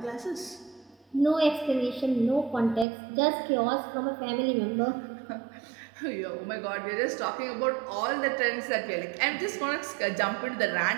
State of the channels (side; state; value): left; drops out; at 2.9 s